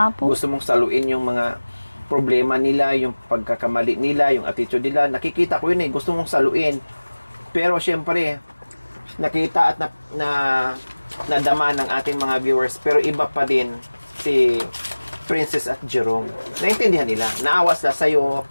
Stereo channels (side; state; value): both; inverted; correlation -1.00